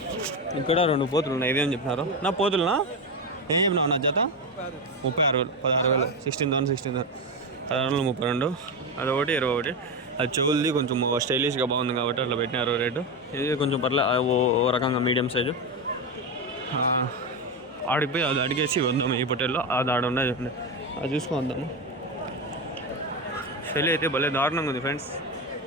ఇక్కడ 2 పోతులు ఉన్నాయి. ఇవేం చెప్పినారు నా పోతులునా? ఏం చెప్పినావు నా జత? 36,000, 16,000, 16,000, 16,032. అదొకటి 21. అది చెవులది కొంచెం స్టైలిష్గా బాగుంది కాబట్టి అట్లా పెట్టినారు రేటు. ఇది కొంచెం ఓ రకంగా మీడియం సైజు. ఆడిపోయి అది అడిగేసి వద్దాము. ఈ పొట్టేల్లో అది ఆడ ఉన్నది అది చూసుకుందాము. చెల్లి అయితే భలే దారుణంగా ఉంది ఫ్రెండ్స్.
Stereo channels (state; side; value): normal; both; correlation 0.14